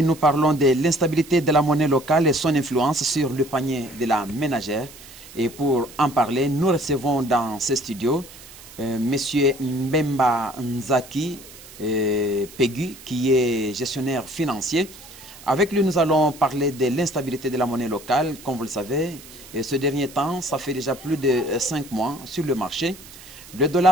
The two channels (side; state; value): right; noise; hiss, 19 dB below the sound